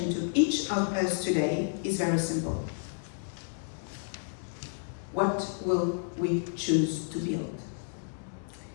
to each of us today is very simple. What will we choose to build?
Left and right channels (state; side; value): silent; right; digital silence